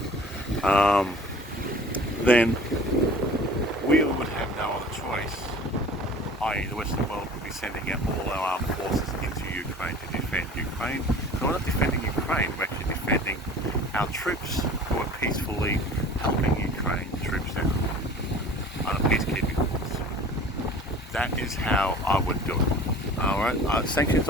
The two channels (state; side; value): normal; both; correlation 0.44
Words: then we would have no other choice, i.e. the Western world would be sending out all our armed forces into Ukraine to defend Ukraine. So we're not defending Ukraine, we're actually defending our troops who are peacefully helping Ukraine troops out on a peacekeeping force. That is how I would do it. Alright, sanctions